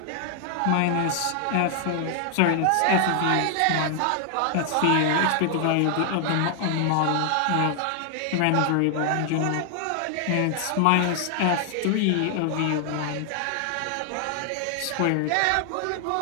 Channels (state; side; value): different; both; correlation 0.00